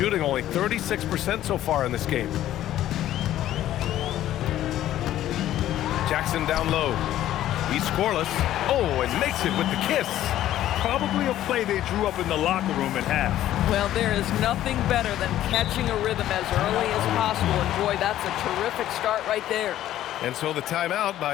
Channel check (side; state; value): right; quieter; 12.9 dB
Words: only 36% so far in this game. Jackson down low. He's scoreless. Oh, and makes it with the kiss. Probably a play they drew up in the locker room at half. Well, there is nothing better than catching a rhythm as early as possible. And boy, that's a terrific start right there. And so the timeout